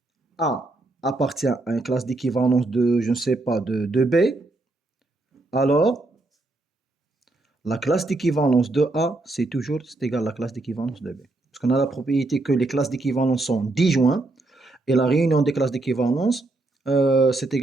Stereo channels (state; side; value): quieter; left; 3.0 dB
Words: A appartient à une classe d'équivalence de, je ne sais pas, de B, alors la classe d'équivalence de A, c'est égal à la classe d'équivalence de B. Parce qu'on a la propriété que les classes d'équivalence sont disjointes, et la réunion des classes d'équivalence, c'est